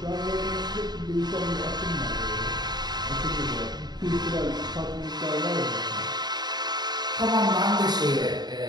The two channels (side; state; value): left; late; 0.20 ms